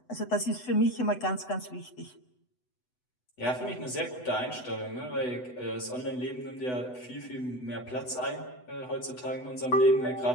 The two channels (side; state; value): right; late; 8.0 ms